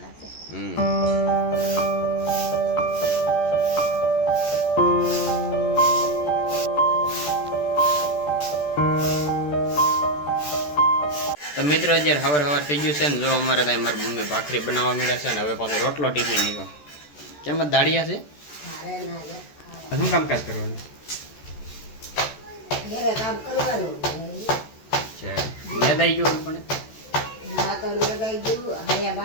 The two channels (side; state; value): right; late; 14 ms